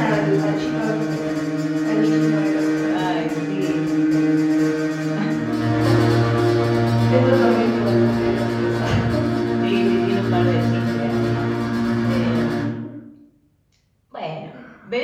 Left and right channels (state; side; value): identical; both; correlation 1.00